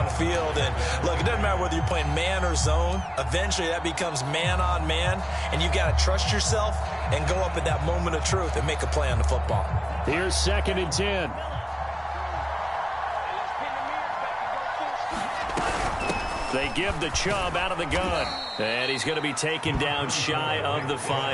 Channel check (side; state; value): both; identical; correlation 1.00